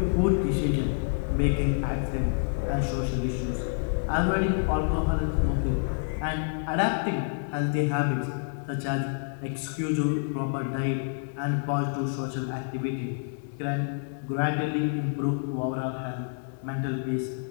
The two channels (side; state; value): right; silent; digital silence